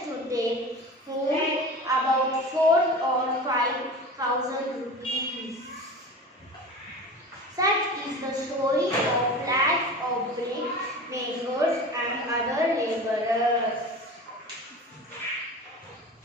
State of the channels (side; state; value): both; normal; correlation 0.34